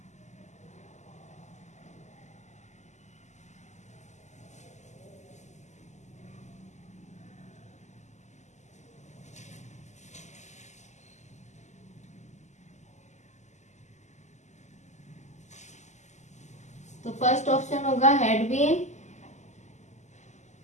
तो first option होगा had been,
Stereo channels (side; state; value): right; late; 0.34 ms